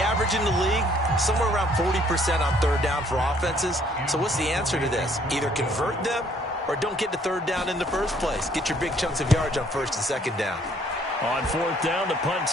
average in the league, somewhere around 40% on 3rd down for offenses. So what's the answer to this? Either convert them or don't get to 3rd down in the first place. Get your big chunks of yards on 1st and 2nd down. On 4th down, the punt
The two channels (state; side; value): normal; both; correlation 0.63